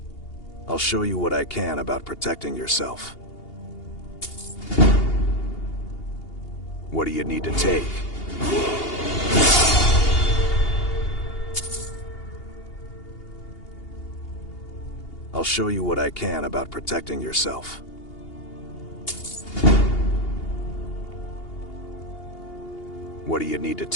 I'll show you what I can about protecting yourself. What do you need to take? I'll show you what I can about protecting yourself. What do you need to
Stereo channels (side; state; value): right; late; 2.8 ms